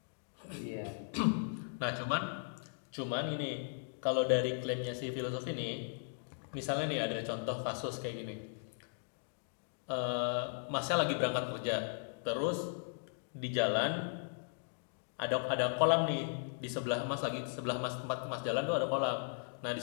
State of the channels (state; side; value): silent; right; digital silence